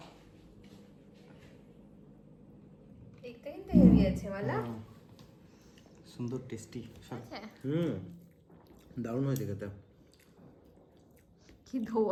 দেখতে কিন্তু হেভি আছে বলা, সুন্দর টেস্টি। আচ্ছা দারুণ হয়েছে খেতে। কি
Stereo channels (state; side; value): identical; both; correlation 1.00